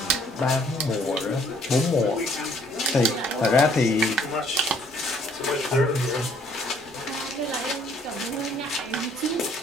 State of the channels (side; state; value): both; normal; correlation 0.62